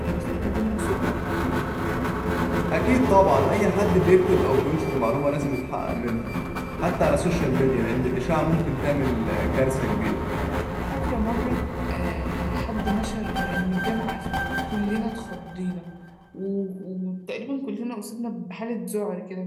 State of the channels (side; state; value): both; identical; correlation 1.00